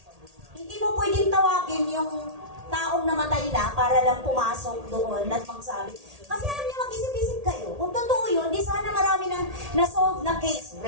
hindi mo pwedeng tawagin yung taong namatay na para lang pumasok doon at magsabi. Kasi alam niyo, mag-isip-isip kayo. Kung totoo yun, di sana marami nang na-solve na case.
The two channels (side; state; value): left; late; 1.8 ms